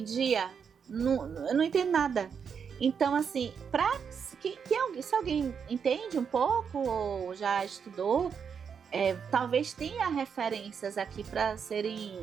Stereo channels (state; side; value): quieter; left; 6.8 dB